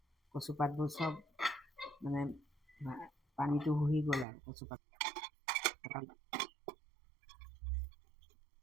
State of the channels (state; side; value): drops out; left; at 4.2 s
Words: কচুপাতবোৰ চব মানে পানীটো শুহি গ'ল আৰু কচুপাত।